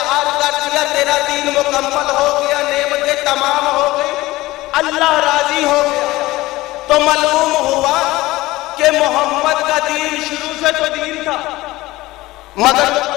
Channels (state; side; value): quieter; right; 18.6 dB